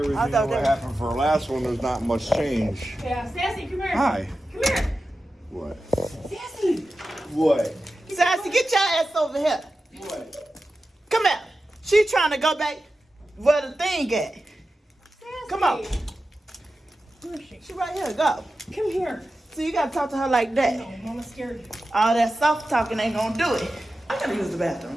I to thought what that- happened for our last one, there's not much change. Yeah, Sassy, come here. Hi. Come here. What? Sassy. What? Sassy, get your ass over here. What? Come here. She trying to go back where the thing at. Sassy. Come on. Where is she? She right here. Go. Come here. So you gotta talk to her like that. No, Mama's scared. All that soft talking ain't gonna do it. I gotta use the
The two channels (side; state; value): both; normal; correlation 0.93